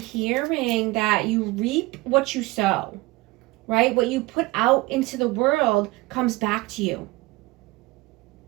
that you reap what you sow, right? What you put out into the world comes back to you,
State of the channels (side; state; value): left; quieter; 21.5 dB